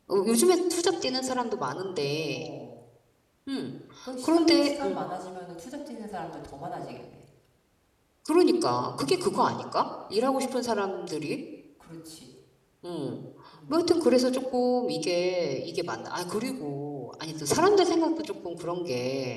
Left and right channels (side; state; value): both; identical; correlation 1.00